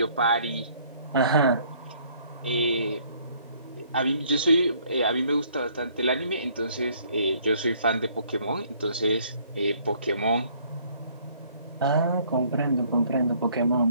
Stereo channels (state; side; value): inverted; both; correlation -0.62